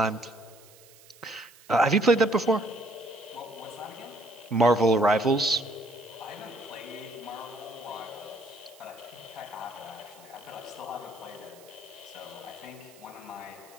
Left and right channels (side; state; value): right; noise; hiss, 24 dB below the sound